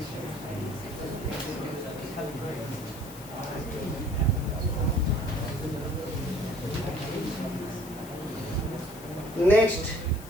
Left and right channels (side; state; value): left; noise; hiss, 17 dB below the sound